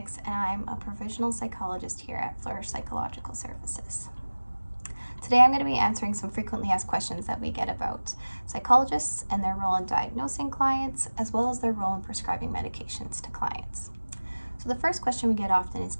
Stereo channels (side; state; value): both; inverted; correlation -1.00